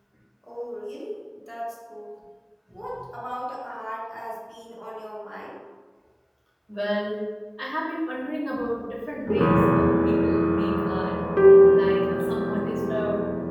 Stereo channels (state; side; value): identical; both; correlation 1.00